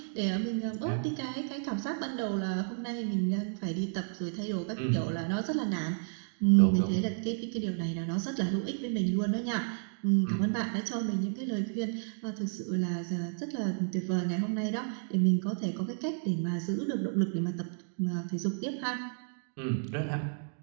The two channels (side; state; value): left; silent; digital silence